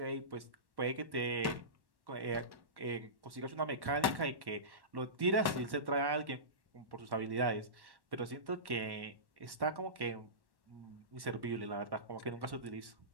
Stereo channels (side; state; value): left; late; 1.1 ms